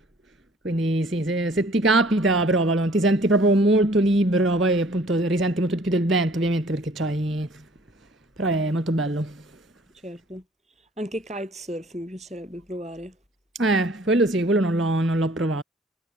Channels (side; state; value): both; normal; correlation 0.55